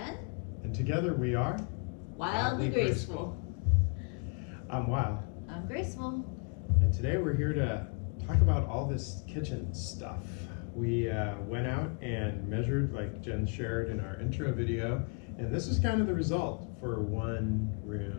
And together we are Wildly Graceful. I'm Wild. I'm Graceful. And today we're here to talk about all this kitchen stuff. We went out and measured, like Jen shared in our intro video, and this is kind of the result for one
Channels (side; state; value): right; quieter; 37.8 dB